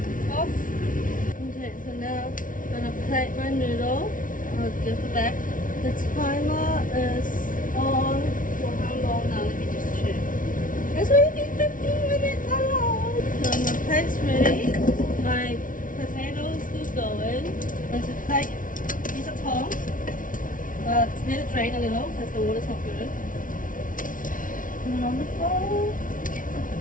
Off. Okay, so now I'm gonna plate my noodle. I'll give it back. The timer is on for how long now? Let me just check. It's already been 15 minutes. Hello. So my plate's ready. My potato is still going. I'm going to plate. These are tongs. Let it drain a little because the water's not good. Put it on the bowl.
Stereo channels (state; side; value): late; right; 0.38 ms